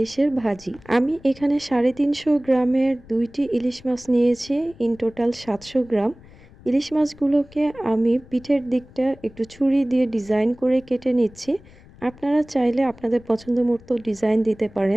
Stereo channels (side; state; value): left; noise; rumble, 23 dB below the sound